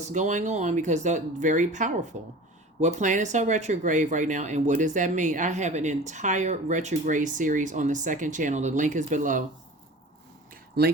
going on? Because they're very powerful. What planets are retrograde right now, and what does that mean? I have an entire retrograde series on the second channel. The link is below.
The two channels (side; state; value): both; normal; correlation 0.39